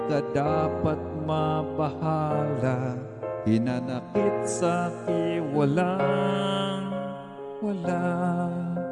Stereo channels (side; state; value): both; identical; correlation 1.00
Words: ka dapat mabahala, hinanakit sa'ki walang wala.